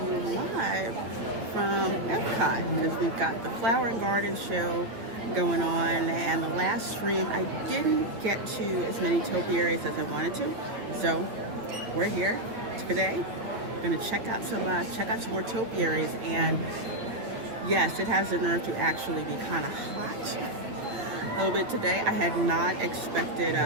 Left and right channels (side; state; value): left; late; 8.8 ms